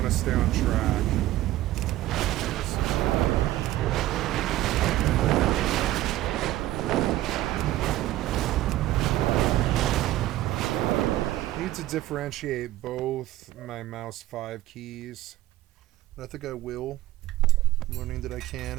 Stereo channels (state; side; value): quieter; left; 15.2 dB